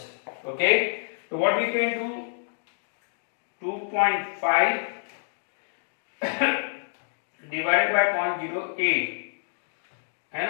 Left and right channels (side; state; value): right; silent; digital silence